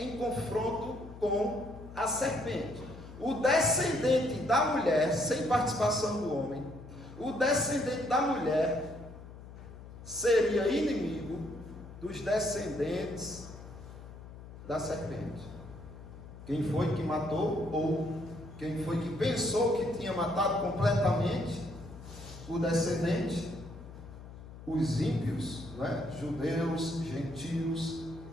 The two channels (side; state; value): left; noise; hum, 15 dB below the sound